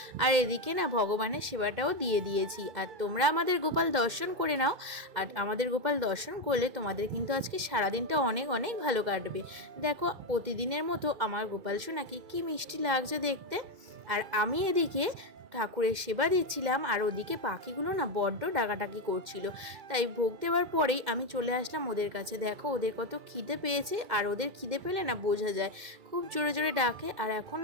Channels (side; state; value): left; late; 2.1 ms